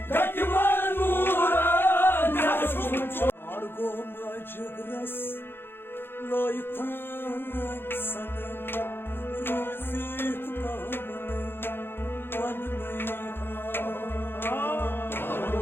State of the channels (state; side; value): late; right; 0.10 ms